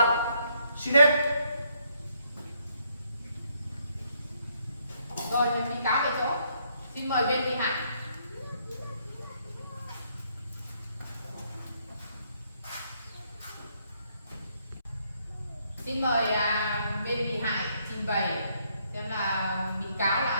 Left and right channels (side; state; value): both; inverted; correlation -0.72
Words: Xin hết. Rồi bị cáo về chỗ. Xin mời bên bị hại. Xin mời bên bị hại trình bày xem là bị cáo